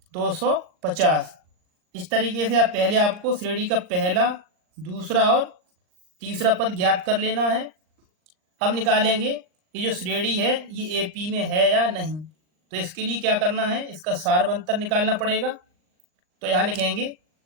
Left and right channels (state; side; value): late; left; 39 ms